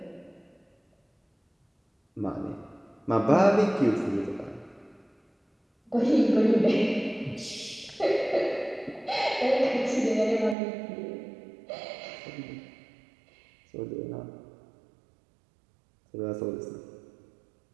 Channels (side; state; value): left; drops out; at 10.6 s